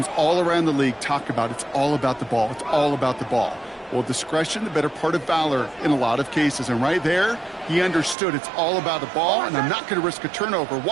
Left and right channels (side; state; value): left; drops out; at 8.2 s